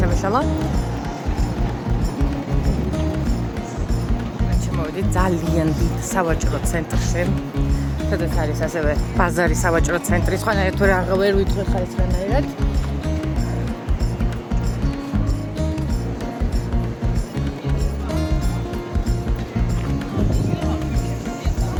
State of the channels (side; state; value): both; identical; correlation 1.00